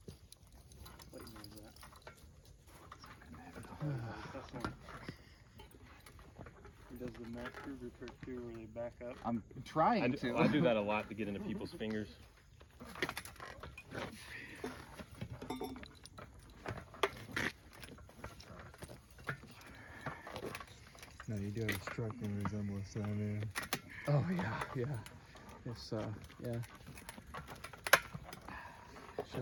Does the Max Kruger trick too, where they back up? I'm trying I do that a lot to get into people's fingers. No, you do have a striking resemblance to that man. Oh yeah. It's yeah. It's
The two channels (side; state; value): both; identical; correlation 1.00